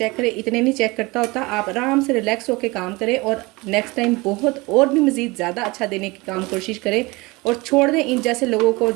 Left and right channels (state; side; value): quieter; left; 23.7 dB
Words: करे, इतने नहीं चेक करता होता। आप आराम से रिलैक्स होकर काम करें और नेक्स्ट टाइम बहुत और भी मज़ीद ज़्यादा अच्छा देने की काम कोशिश करें, और छोड़ दें इन जैसे लोगों को